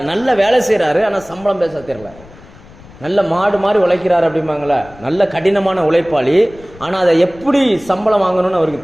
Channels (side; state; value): left; noise; rumble, 22 dB below the sound